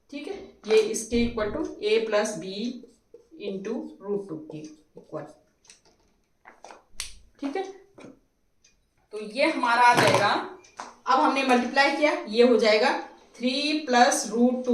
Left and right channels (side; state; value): both; identical; correlation 1.00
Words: ठीक है, ये इसके equal to a plus b into √2 के इक्वल। ठीक है, तो ये हमारा आ जाएगा, अब हमने मल्टीप्लाई किया, ये हो जाएगा 3 प्लस